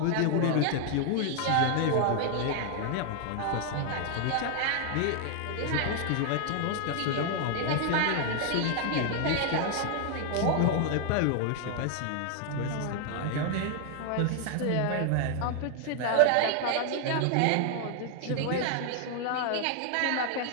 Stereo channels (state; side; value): different; both; correlation 0.00